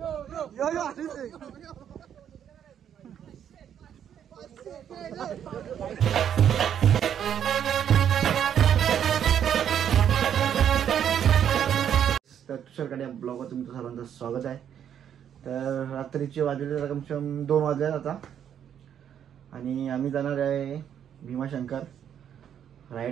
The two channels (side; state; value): left; quieter; 9.2 dB